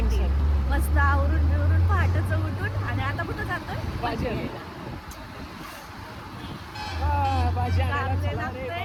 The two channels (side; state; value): both; identical; correlation 1.00